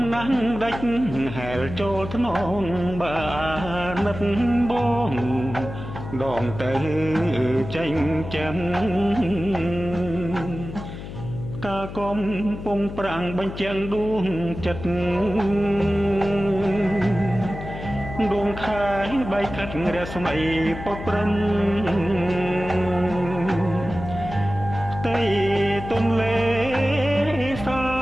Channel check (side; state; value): left; noise; hum, 10 dB below the sound